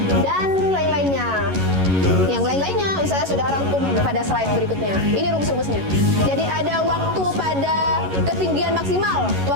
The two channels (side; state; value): left; late; 11 ms